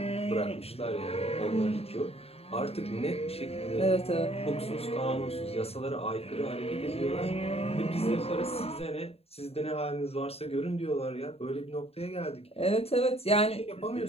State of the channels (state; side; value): late; right; 0.29 ms